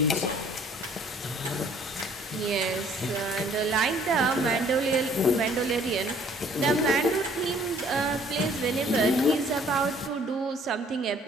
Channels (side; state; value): both; normal; correlation 0.58